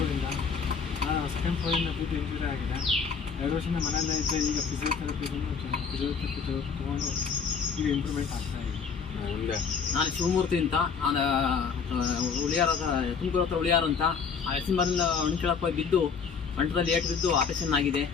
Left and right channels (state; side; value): quieter; right; 6.0 dB